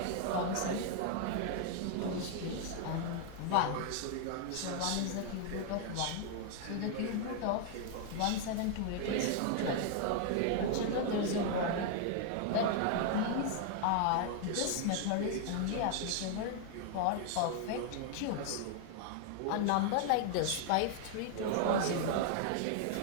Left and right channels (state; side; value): different; both; correlation 0.00